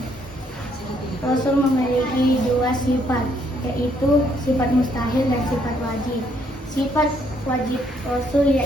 Rasul memiliki 2 sifat, yaitu sifat mustahil dan sifat wajib. Sifat wajib Rasul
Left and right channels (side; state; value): both; normal; correlation 0.69